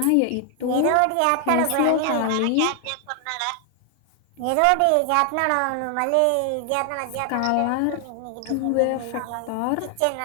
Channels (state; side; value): different; both; correlation 0.00